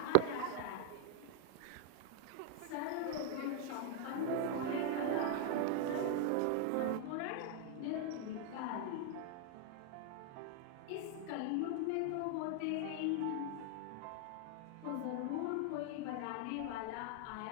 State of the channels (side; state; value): both; different; correlation 0.00